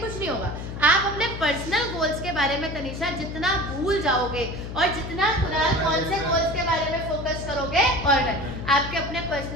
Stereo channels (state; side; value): noise; left; hum, 8 dB below the sound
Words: नहीं होगा। आप अपने पर्सनल गोल्स के बारे में तनिषा जितना भूल जाओगे और जितना कुणाल कौन से गोल्स के बारे में फोकस करोगे और आपके अपने